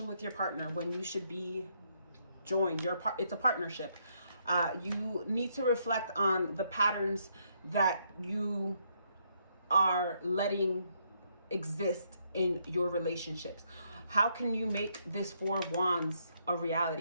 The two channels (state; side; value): inverted; both; correlation -0.74